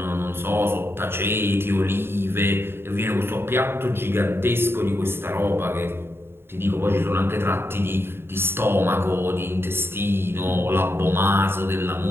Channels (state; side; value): late; left; 0.11 ms